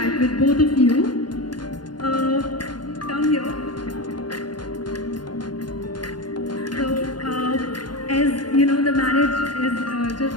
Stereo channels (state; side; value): late; right; 0.71 ms